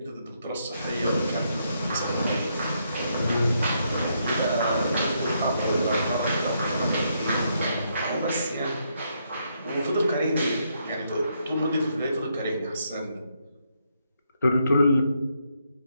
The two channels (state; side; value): inverted; both; correlation -0.76